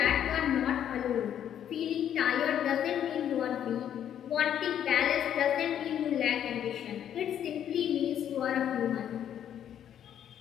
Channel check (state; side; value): quieter; right; 9.8 dB